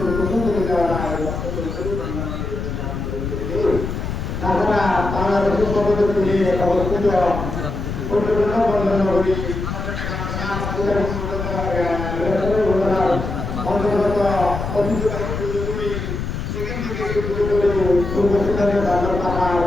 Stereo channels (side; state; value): left; noise; rumble, 4 dB below the sound